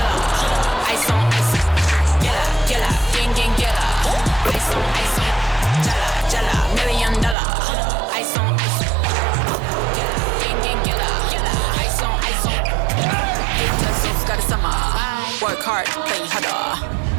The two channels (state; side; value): drops out; left; at 7.4 s